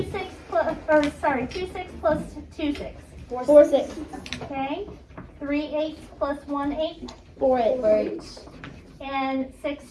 6 plus, or sorry, 2 6 plus 2 6? 4 6. Okay. 3 8 plus 1 8. 4 8. And 6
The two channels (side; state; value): both; identical; correlation 1.00